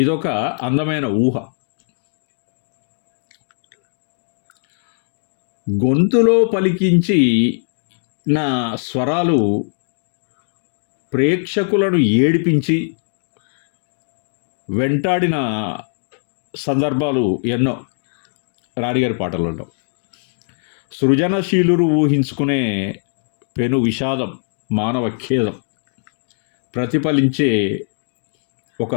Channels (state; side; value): silent; right; digital silence